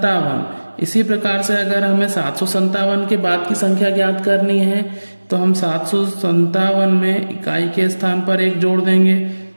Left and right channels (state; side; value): inverted; both; correlation -1.00